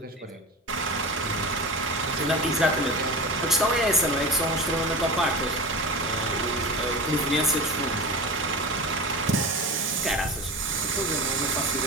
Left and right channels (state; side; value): normal; both; correlation 0.30